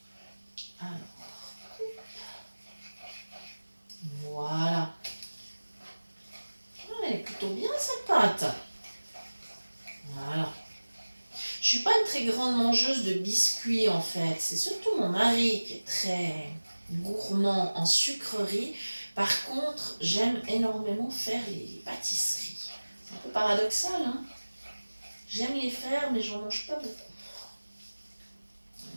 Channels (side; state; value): both; inverted; correlation -1.00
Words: Alors, voilà. Elle est plutôt bien cette pâte. Voilà. Je suis pas une très grande mangeuse de biscuits en fait. C'est surtout mon mari qui est très gourmand en sucreries. Par contre, j'aime énormément faire les pâtisseries. C'est un peu paradoxal, hein. J'aime les faire, mais j'en mange pas beaucoup.